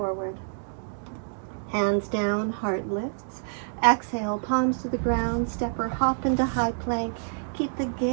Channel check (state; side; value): silent; left; digital silence